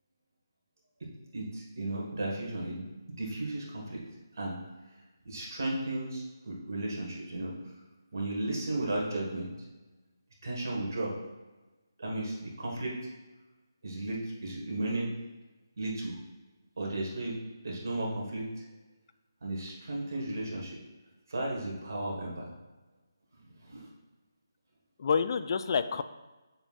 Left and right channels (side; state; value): both; inverted; correlation -0.81